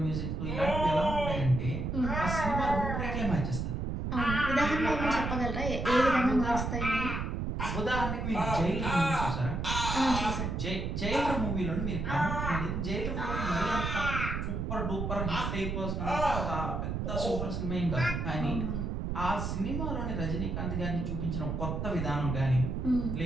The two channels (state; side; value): noise; right; rumble, 2 dB below the sound